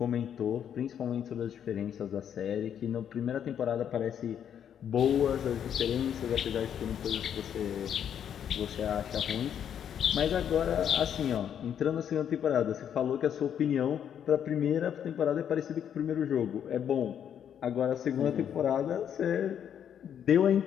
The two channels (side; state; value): right; quieter; 9.0 dB